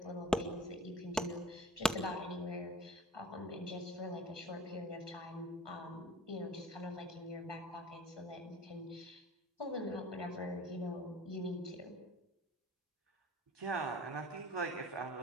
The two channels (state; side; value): normal; both; correlation 0.42